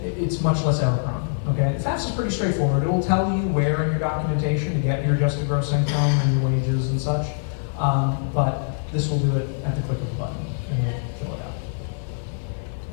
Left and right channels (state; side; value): silent; right; 61 dB below the other